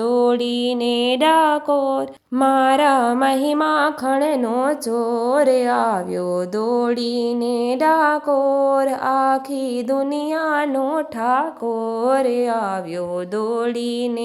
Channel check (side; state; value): both; identical; correlation 1.00